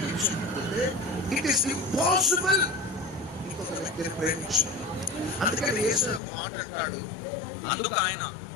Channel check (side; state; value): right; drops out; at 6.2 s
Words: ఇట్ ఈస్ ఇంపాసిబుల్ ఇంకొక వ్యక్తిని ప్రేమించాలి. అందుకని యేసయ్య ఒక మాట అంటాడు, అందుకు ఆయన